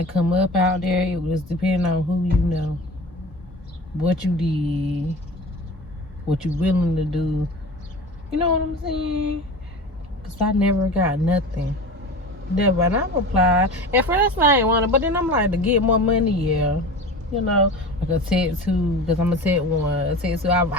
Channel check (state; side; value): normal; both; correlation 0.34